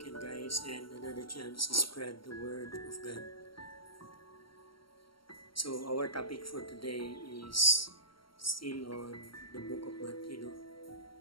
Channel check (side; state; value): right; late; 0.73 ms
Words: guys and another chance to spread the word of God. So our topic for today is still on the book of Matthew.